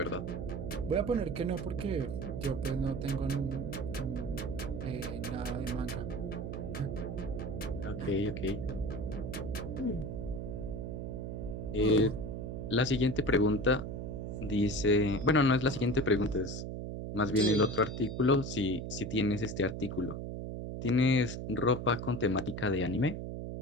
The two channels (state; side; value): noise; right; hum, 5 dB below the sound